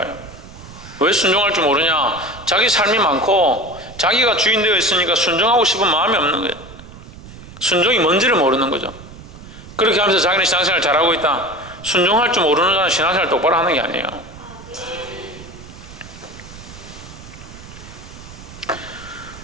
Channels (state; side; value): noise; right; rumble, 17 dB below the sound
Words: 왜 순종할 줄 모르냐? 자기 삶이 많고 자기가 주인 되어 있으니까 순종하고 싶은 마음이 없는 거예요. 순종이 뭔지를 모르는 거죠. 그렇게 하면서 자기는 신앙생활 잘하고 있다. 순종할 줄 모르는 자는 신앙생활 똑바로 하는 게 아니에요.